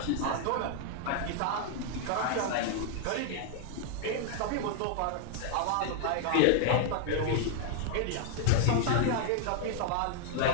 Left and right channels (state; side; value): different; both; correlation 0.00